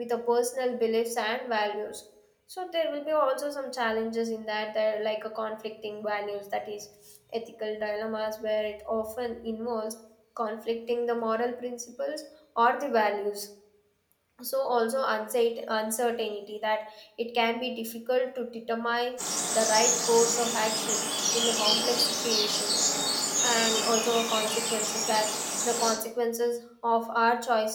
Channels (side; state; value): both; identical; correlation 1.00